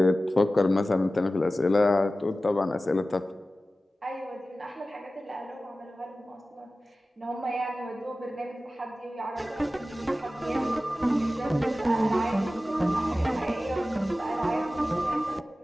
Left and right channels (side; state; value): both; normal; correlation 0.95